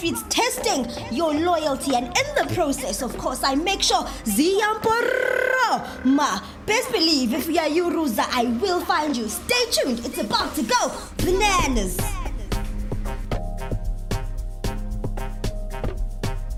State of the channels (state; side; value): identical; both; correlation 1.00